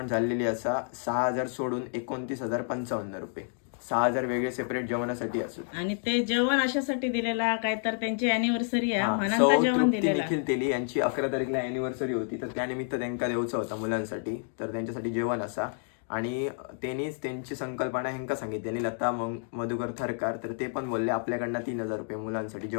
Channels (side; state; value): right; silent; 58 dB below the other